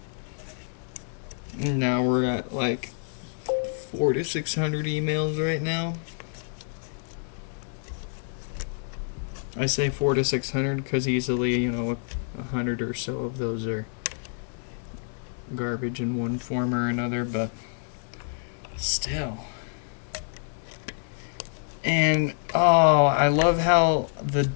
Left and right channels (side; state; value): right; silent; digital silence